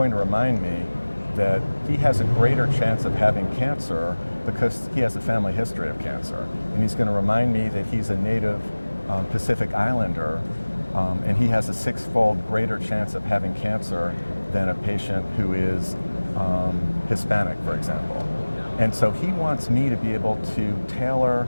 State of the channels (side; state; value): both; inverted; correlation -1.00